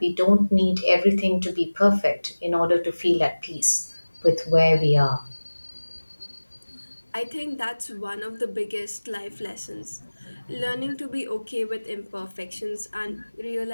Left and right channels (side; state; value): both; inverted; correlation -1.00